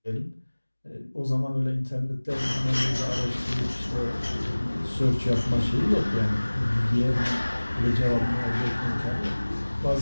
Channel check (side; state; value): both; inverted; correlation -1.00